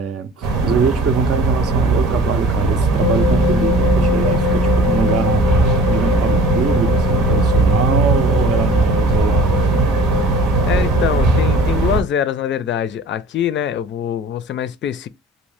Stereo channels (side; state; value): both; normal; correlation 0.45